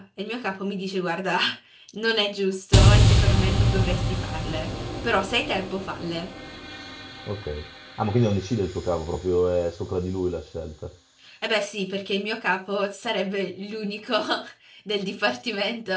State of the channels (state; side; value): identical; both; correlation 1.00